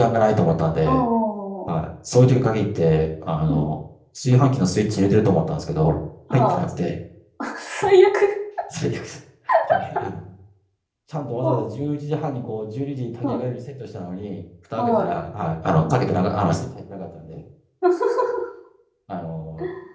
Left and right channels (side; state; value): both; identical; correlation 1.00